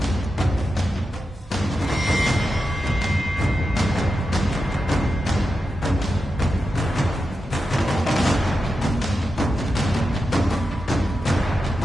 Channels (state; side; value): normal; both; correlation 0.89